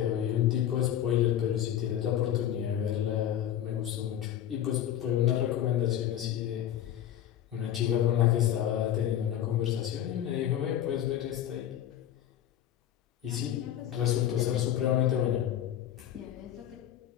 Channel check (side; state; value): right; quieter; 11.0 dB